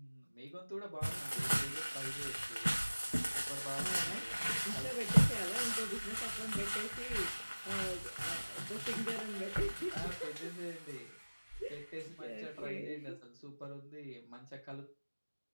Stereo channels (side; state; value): both; inverted; correlation -1.00